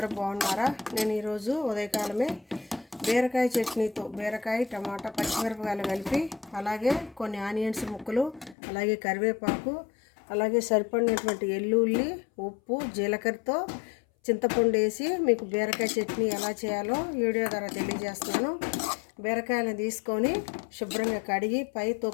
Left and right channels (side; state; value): right; drops out; at 8.6 s